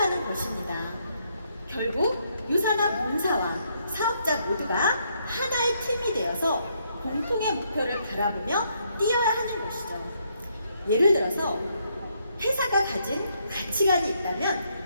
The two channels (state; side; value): inverted; both; correlation -0.74